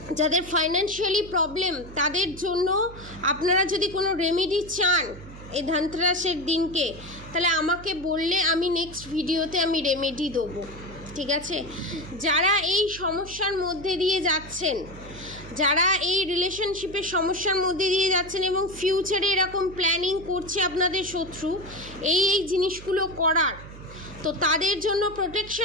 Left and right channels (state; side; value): noise; right; hum, 15 dB below the sound